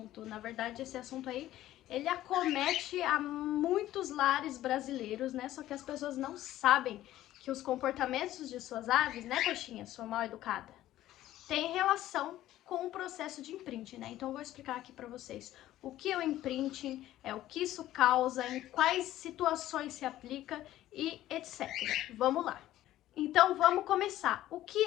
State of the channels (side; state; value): right; quieter; 14.1 dB